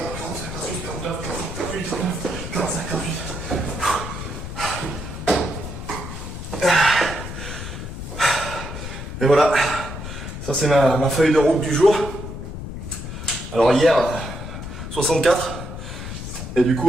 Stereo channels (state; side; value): noise; left; rumble, 8 dB below the sound